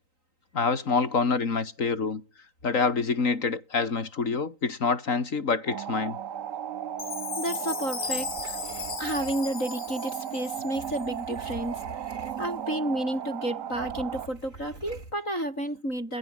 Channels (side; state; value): right; late; 3.9 ms